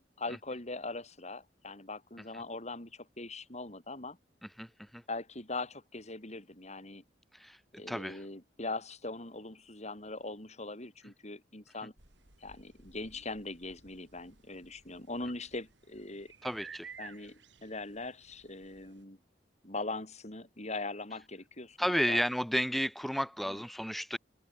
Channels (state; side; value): normal; both; correlation 0.62